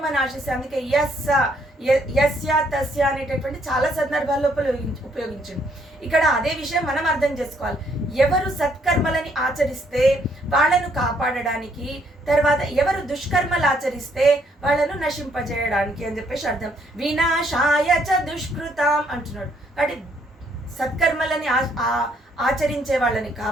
ఆశిస్తే, అందుకే యస్య తస్య అనేటటువంటి చాలా సందర్భాల్లో ఉపయోగించింది. ఇక్కడ అదే విషయం మనం అర్థం చేసుకోవాలి. ఎవరు సత్కర్మలని ఆచరిస్తే వాళ్ళను కాపాడడానికి, తర్వాత ఎవరు దుష్కర్మలు ఆచరిస్తే వాళ్ళను నశింపజేయడానికి అని చెప్పేసి అర్థం. వినాశాయ చ దుష్కృతాం అంటున్నాడు. కాబట్టి సత్కర్మలని ఆచరించే వాళ్ళని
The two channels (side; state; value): both; normal; correlation 0.69